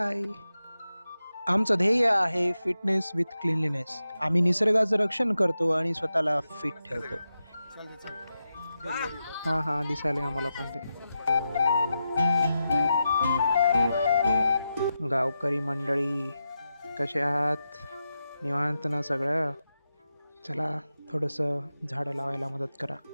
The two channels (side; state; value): both; inverted; correlation -0.89